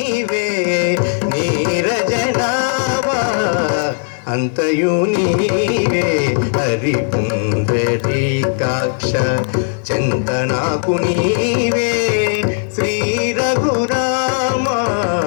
नीरजनाभ अंतयु नीवे हरि पुंडरीकाक्ष चिंतनाकु नीवे श्री रघुराम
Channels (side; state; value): right; silent; 68 dB below the other